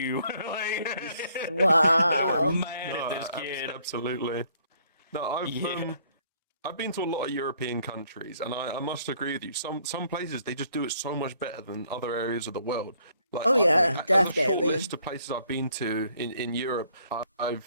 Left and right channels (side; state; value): both; inverted; correlation -0.65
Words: Like, they were Wow. mad at No, this kid. absolutely. No, I've Yeah. I've been to a lot of European countries, and I must agree with you. Some places they just do it so much better than other areas of the world. Like Oh yeah, and a short definitely. list of places I've been to in Europe.